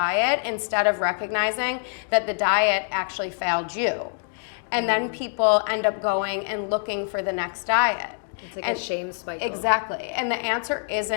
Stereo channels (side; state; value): right; silent; 62 dB below the other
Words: instead of recognizing that the diet actually failed you. And then people end up going and looking for the next diet. It's like a shame cycle. Exactly. And the answer